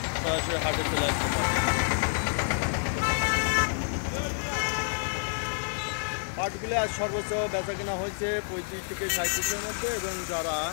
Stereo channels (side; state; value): right; silent; digital silence